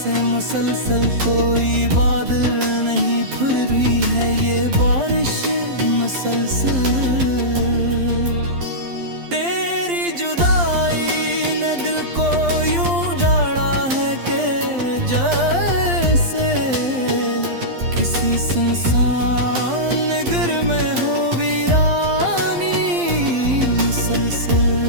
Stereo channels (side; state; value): left; late; 12 ms